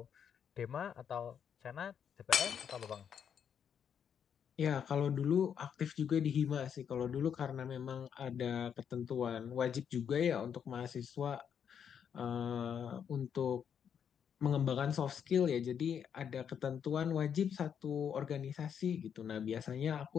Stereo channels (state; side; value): quieter; right; 8.0 dB